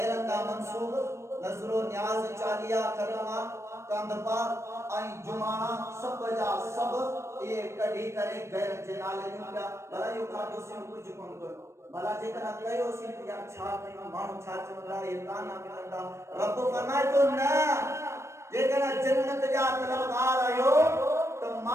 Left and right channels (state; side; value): late; left; 0.13 ms